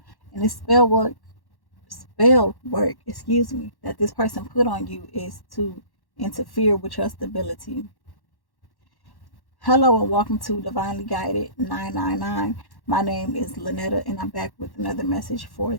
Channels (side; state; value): right; late; 1.1 ms